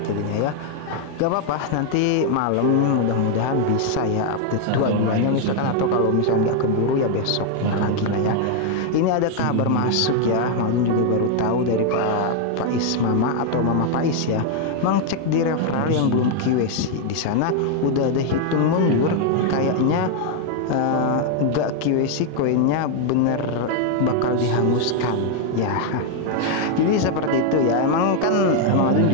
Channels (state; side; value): different; both; correlation 0.00